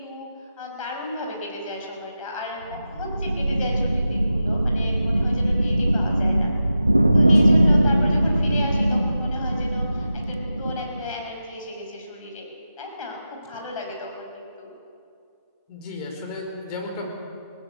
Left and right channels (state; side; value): inverted; both; correlation -0.91